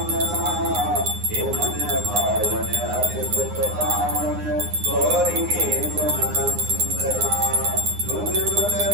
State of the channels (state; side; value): late; left; 9.7 ms